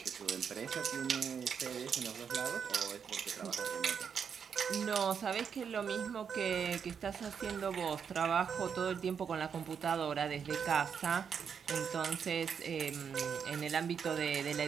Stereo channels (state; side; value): quieter; left; 7.0 dB